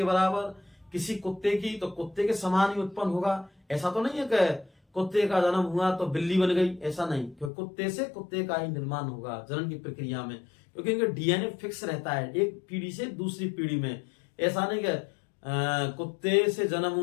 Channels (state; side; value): drops out; right; at 7.5 s